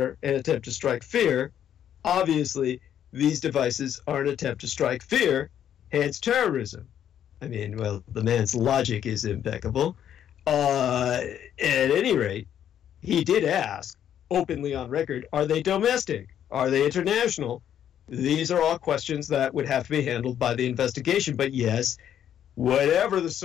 an attempt to strike fear. Obviously, these devices are an attempt to strike fear, hence terrorism. I mean, well, the man's logic is impeccable. At any rate, he did ask, openly on record, are they domestic? Are they international? These are all questions that would have to be handled by the investigation. But yes, whatever the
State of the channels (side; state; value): right; quieter; 9.9 dB